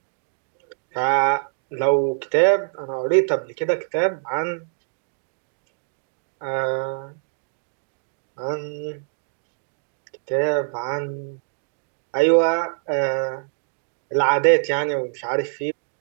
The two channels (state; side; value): silent; left; digital silence